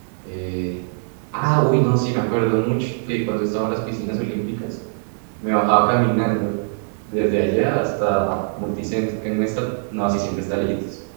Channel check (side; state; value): left; silent; digital silence